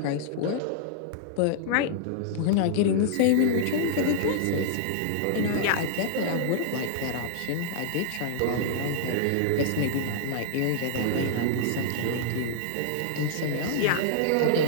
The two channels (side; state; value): both; different; correlation -0.01